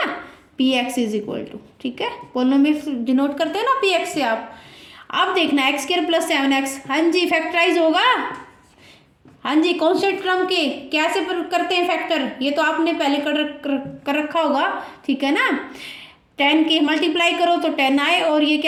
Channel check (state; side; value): identical; both; correlation 1.00